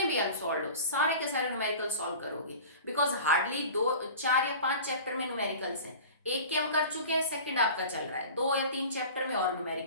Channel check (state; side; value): inverted; both; correlation -0.37